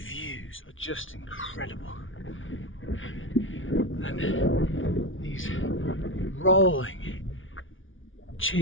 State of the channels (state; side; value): late; right; 0.57 ms